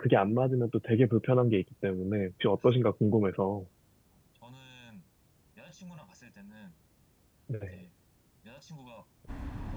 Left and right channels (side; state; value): both; identical; correlation 1.00